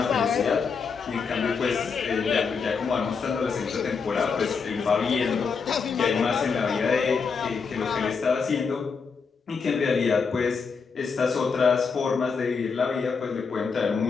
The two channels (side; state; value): right; quieter; 5.4 dB